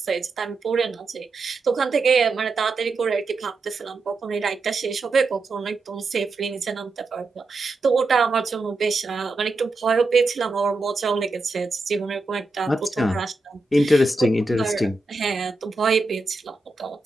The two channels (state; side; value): quieter; left; 3.3 dB